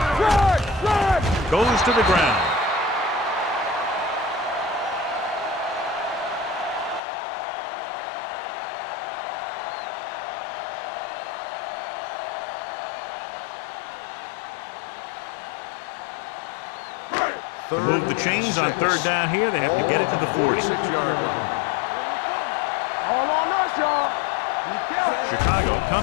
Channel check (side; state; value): right; drops out; at 7.0 s